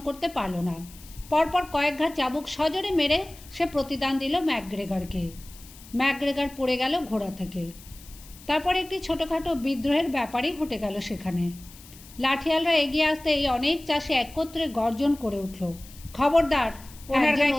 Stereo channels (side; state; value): left; noise; hiss, 20 dB below the sound